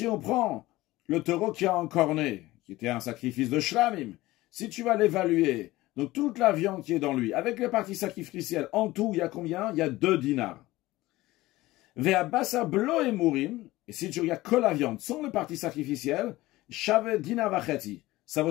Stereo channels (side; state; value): right; quieter; 18.2 dB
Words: on prend le taureau qui a encorné, qui était un sacrifice de shlamim, si tu vas l'évaluer, donc toute la viande qui est dans lui, avec les parties sacrificielles, en tout, il y a combien? Il y a 2 dinars. Ve'abasa blo emurim, et si tu regardes que la viande, sans les parties sacrificielles, shave dinar vacheti, ça vaut